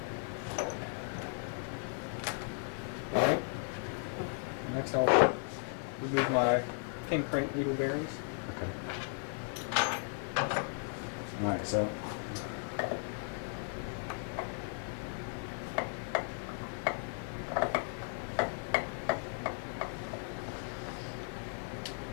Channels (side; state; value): right; silent; 54 dB below the other